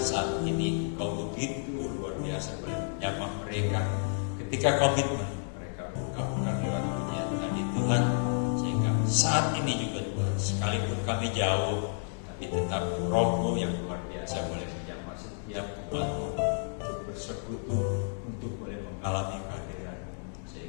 ini Engkau begitu luar biasa boleh menyapa mereka ketika komitmen mereka ungkapkan lewat pujian tadi Tuhan, sehingga saat ini juga Tuhan, sekalipun kami jauh, tapi tetap Roh-Mu yang luar biasa boleh menyapa setiap umat-Mu untuk bersekutu, untuk boleh mengalami kehadiran-Mu,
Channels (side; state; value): right; silent; digital silence